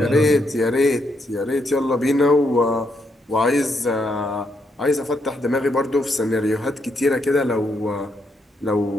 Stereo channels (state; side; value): normal; both; correlation 0.78